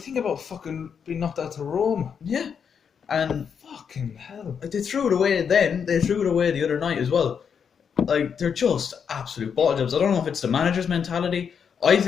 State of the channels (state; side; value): quieter; right; 7.0 dB